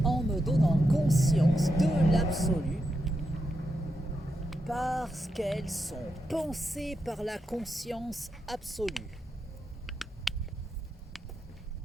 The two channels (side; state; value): both; normal; correlation 0.84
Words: en me donnant conscience de l'absolu, parce qu'elles sont pensées par la conscience absolue.